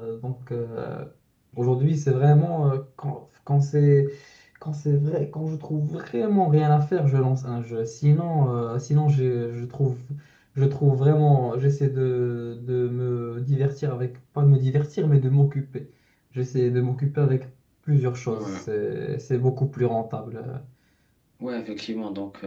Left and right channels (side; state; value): both; identical; correlation 1.00